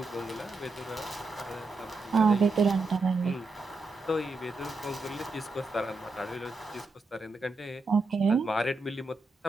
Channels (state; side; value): quieter; left; 3.4 dB